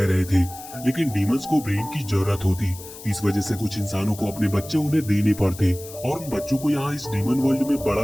रहे थे, लेकिन डीमंस को ब्रेन की जरूरत होती। इस वजह से कुछ इंसानों को अपने बच्चे उन्हें देने पड़ते और उन बच्चों को यहाँ इस डीमन वर्ल्ड में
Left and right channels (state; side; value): noise; left; hiss, 15 dB below the sound